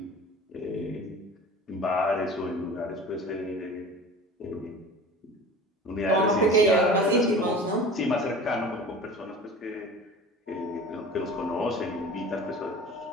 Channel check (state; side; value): normal; both; correlation 0.39